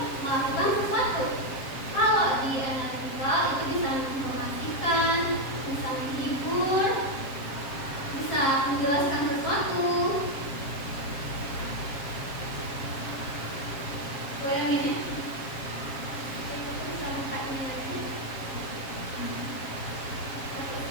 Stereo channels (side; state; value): right; late; 7.4 ms